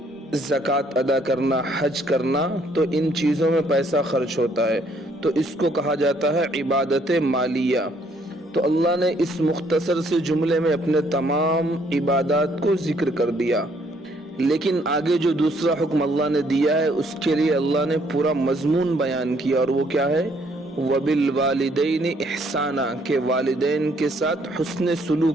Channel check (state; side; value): normal; both; correlation 0.66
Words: زکوٰۃ ادا کرنا، حج کرنا، تو ان چیزوں میں پیسہ خرچ ہوتا ہے، تو اس کو کہا جاتا ہے عبادت مالیہ۔ تو اللہ نے اس مختصر سے جملے میں اپنے تمام عبادات کو ذکر کر دیا، لیکن آگے جو دوسرا حکم اللہ نے دیا ہے اس کے لیے اللہ نے پورا مضمون بیان کیا، اور وہ کیا ہے؟ وَبِالْوَالِدَيْنِ إِحْسَانًا، کہ والدین کے ساتھ حسن